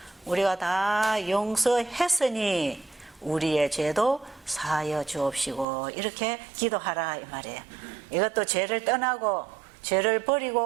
우리가 다 용서했으니 우리의 죄도 사하여 주옵시고 이렇게 기도하라 이 말이에요. 이것도 죄를 떠나고 죄를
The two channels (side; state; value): left; drops out; at 5.7 s